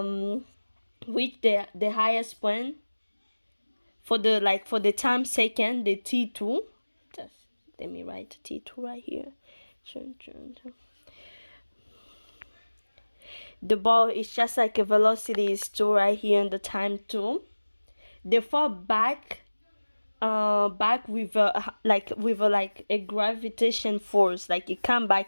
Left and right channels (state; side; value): inverted; both; correlation -1.00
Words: highest point for the time second, the t2. Just let me write t2 right here. The ball is just like a velocity is 2 right here in the time 2. They fall back with a gravitation force, like it come